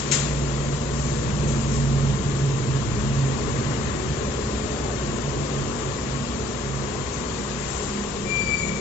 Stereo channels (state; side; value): normal; both; correlation 0.62